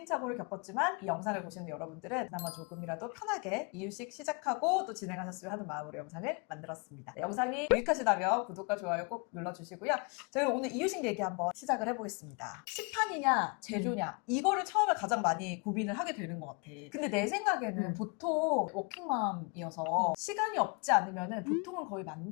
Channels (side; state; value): right; quieter; 32.5 dB